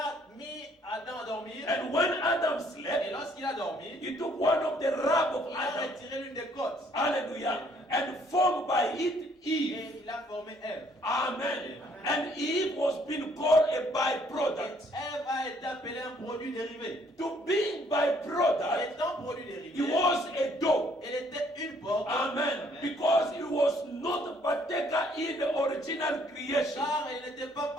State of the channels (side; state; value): both; normal; correlation 0.64